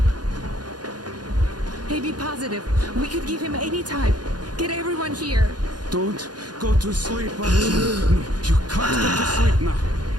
AB positive. We could give him any type. Get everyone here. Don't go to sleep, Artyom. No, you can't go to sleep now.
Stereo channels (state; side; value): late; left; 0.69 ms